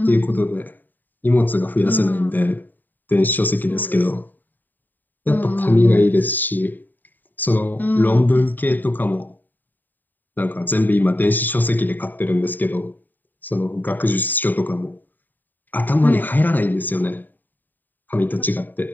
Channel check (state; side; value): late; right; 0.089 ms